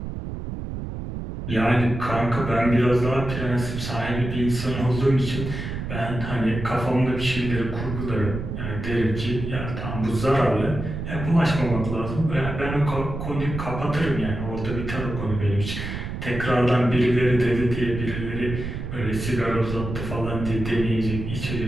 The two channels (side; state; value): right; noise; rumble, 6 dB below the sound